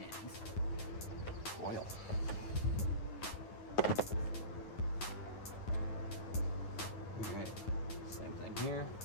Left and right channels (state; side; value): late; right; 9.5 ms